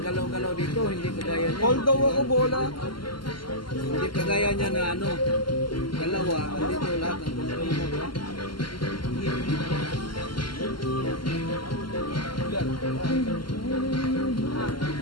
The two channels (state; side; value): late; right; 0.72 ms